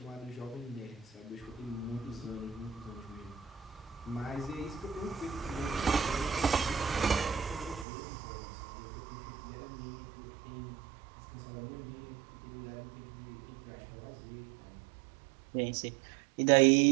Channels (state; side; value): drops out; left; at 7.9 s